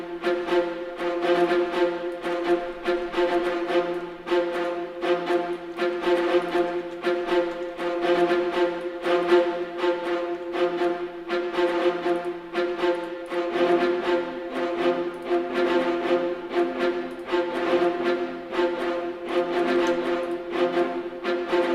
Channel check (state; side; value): identical; both; correlation 1.00